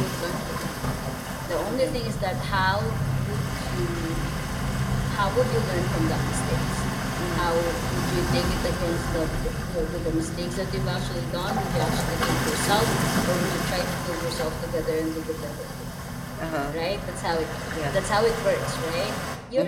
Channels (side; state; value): both; identical; correlation 1.00